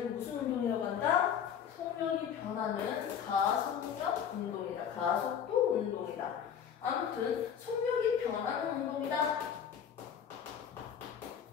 무슨 운동이라고 한다? 속력이 변하는 가속력 운동이다. 가속도 운동이다. 아무튼 속력이 변하는 운동이다.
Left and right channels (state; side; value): quieter; right; 8.2 dB